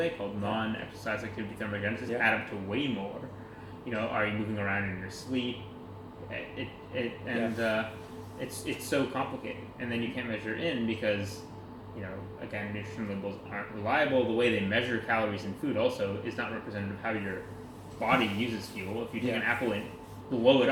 called non-exercise activity thermogenesis add up to way more. Are you moving around in your sleep? It's so complicated, and then you can't measure in because again, nutrition labels aren't reliable. The way they measure calories in food also is not representative of how your body uses fuel. If you take an apple and blow it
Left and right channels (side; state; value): both; identical; correlation 1.00